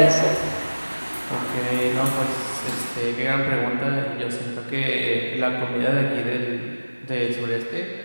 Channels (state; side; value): inverted; both; correlation -1.00